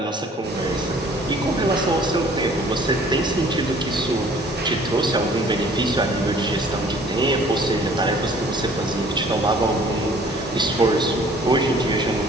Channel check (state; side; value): normal; both; correlation 0.54